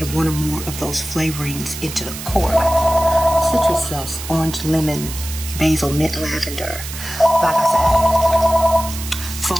one or more of those flavorings into the core. Citrus zest, orange, lemon, basil, mint, lavender. Like I said,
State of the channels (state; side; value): noise; right; hiss, 10 dB below the sound